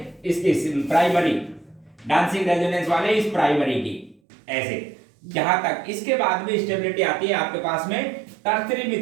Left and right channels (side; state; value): left; drops out; at 4.2 s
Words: इसकी प्राइमरी, डांसिंग रेजोनेंस वाले इस प्राइमरी की, ऐसे जहां तक। इसके बाद में स्टेबिलिटी आती है आपके पास में टर्सरी